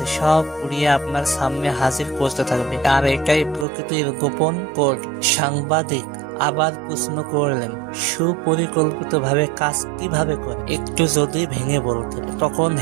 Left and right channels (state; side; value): drops out; left; at 3.7 s